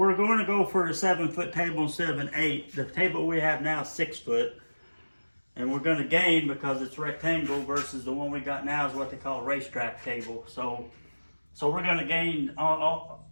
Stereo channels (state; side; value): inverted; both; correlation -1.00